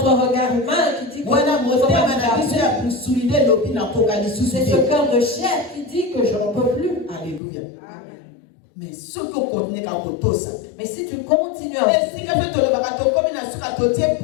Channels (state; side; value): drops out; right; at 7.4 s